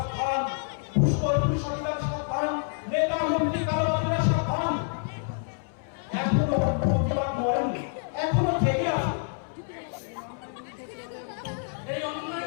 পুষ্কর পুলিশ অফিসার, সাবধান নেতা মন্ত্রী কালোবাজারিরা সাবধান। এখনো প্রতিবাদ মরেননি, এখনো জেগে আছে। এই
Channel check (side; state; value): right; silent; 60 dB below the other